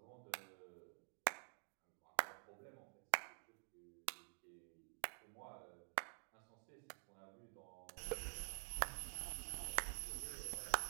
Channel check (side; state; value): left; silent; digital silence